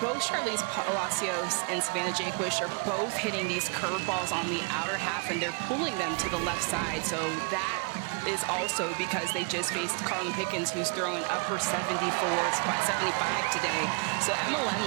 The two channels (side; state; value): left; quieter; 33.2 dB